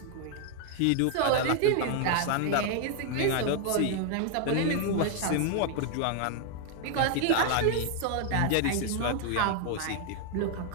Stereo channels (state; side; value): different; both; correlation 0.00